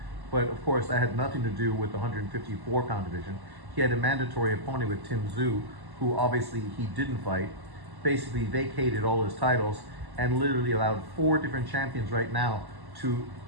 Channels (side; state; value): left; late; 1.1 ms